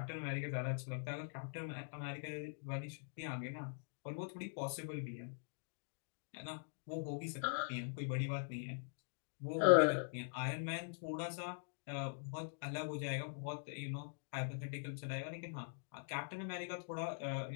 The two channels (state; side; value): silent; right; digital silence